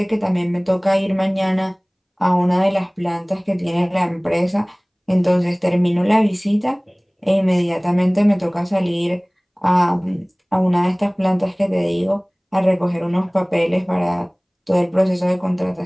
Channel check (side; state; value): both; identical; correlation 1.00